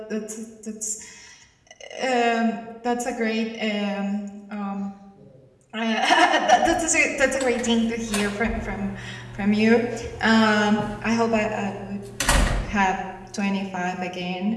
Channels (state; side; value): identical; both; correlation 1.00